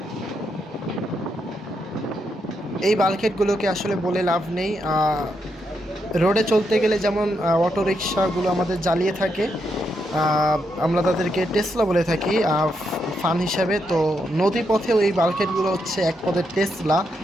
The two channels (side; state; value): both; normal; correlation 0.81